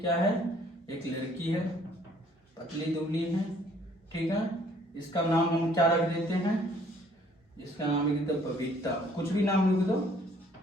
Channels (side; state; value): both; normal; correlation 0.60